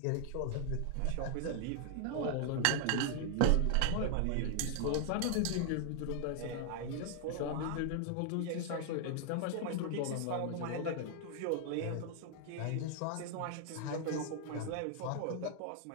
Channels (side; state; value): both; different; correlation 0.00